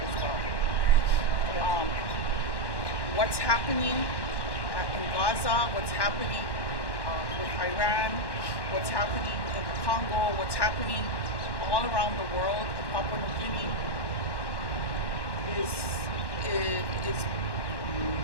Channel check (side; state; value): right; late; 1.1 ms